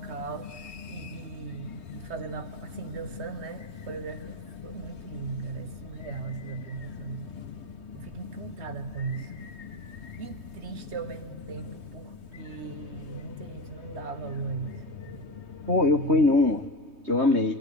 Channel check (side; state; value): left; late; 3.2 ms